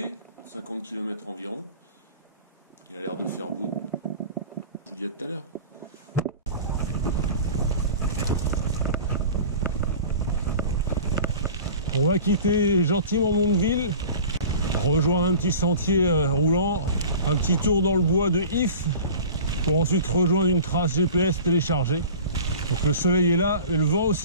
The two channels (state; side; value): inverted; both; correlation -0.39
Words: 50 km environ. Il a l'air de faire beau. Je vous dis à tout à l'heure. On va quitter gentiment Mondeville, rejoindre un petit sentier roulant, un petit tour dans le bois de If, pour ensuite rejoindre une trace GPS téléchargée. Donc le soleil est là, et le vent